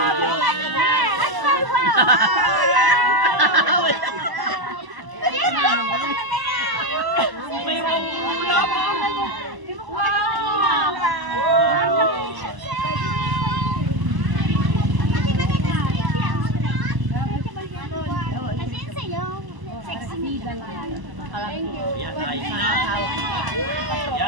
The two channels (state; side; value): late; left; 1.0 ms